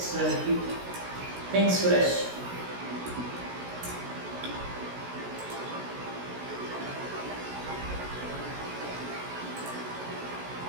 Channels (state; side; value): late; left; 16 ms